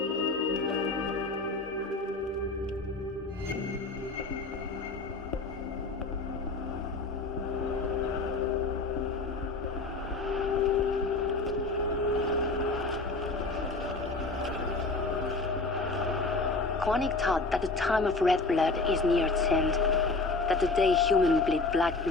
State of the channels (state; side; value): quieter; right; 3.5 dB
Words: Quanic thought that the time of red blood is near its end, that the day humans bleed black